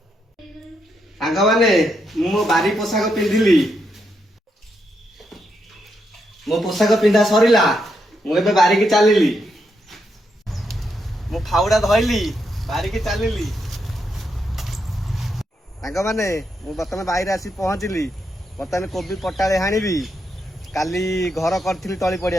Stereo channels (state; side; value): normal; both; correlation 0.81